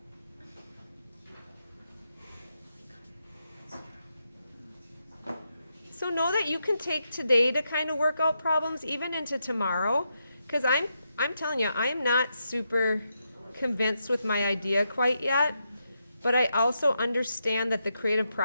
So know that you can take today to kind of work out problems even into tomorrow, because I'm telling you, I am not super convinced with my idea quite yet, but I also understand that the creative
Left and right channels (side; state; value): both; inverted; correlation -0.83